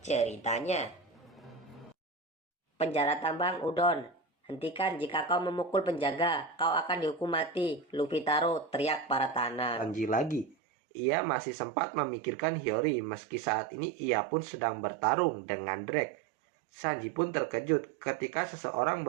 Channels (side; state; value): left; drops out; at 10.6 s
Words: ceritanya. Penjara tambang Udon. Hentikan jika kau memukul penjaga, kau akan dihukum mati. Luffy Taro teriak para tanah. Sanji lagi. Ia masih sempat memikirkan Hiyori meski saat ini ia pun sedang bertarung dengan Drake. Sanji pun terkejut ketika seseorang